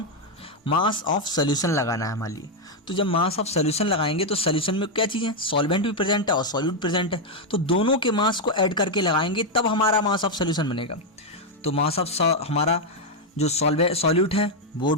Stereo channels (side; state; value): both; normal; correlation 0.01